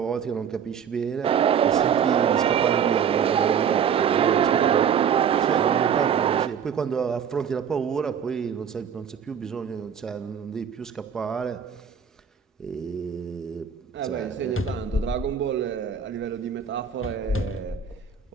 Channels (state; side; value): quieter; left; 7.7 dB